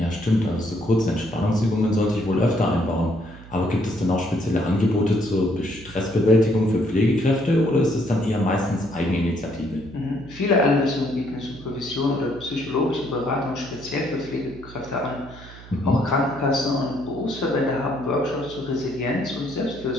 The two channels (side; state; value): right; noise; hum, 18 dB below the sound